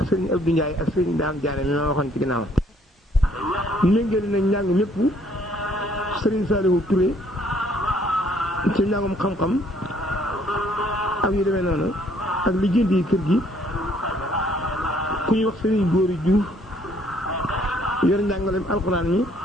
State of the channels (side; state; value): both; normal; correlation 0.63